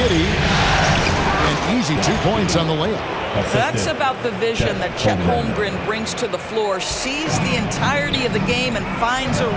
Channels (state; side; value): identical; both; correlation 1.00